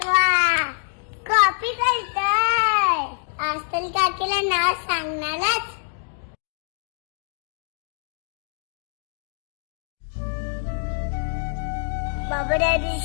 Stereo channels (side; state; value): right; silent; digital silence